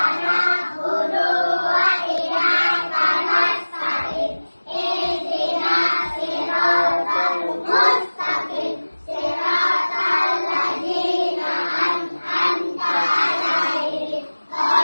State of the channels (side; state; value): both; inverted; correlation -1.00